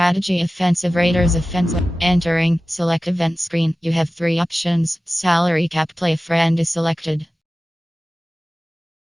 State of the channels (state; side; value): normal; both; correlation 0.96